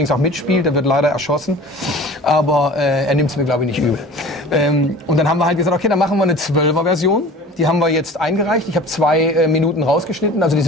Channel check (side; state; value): both; normal; correlation 0.41